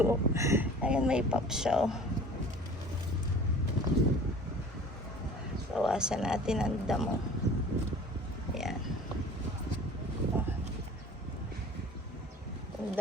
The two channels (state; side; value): normal; both; correlation 0.45